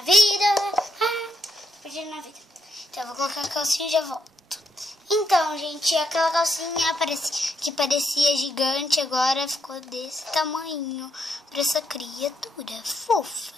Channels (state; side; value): normal; both; correlation 0.78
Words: Então, eu vou colocar a calcinha e já volto. Então, gente, aquela calcinha que parecia gigante, agora ficou desse tamanho para essa criatura fofa,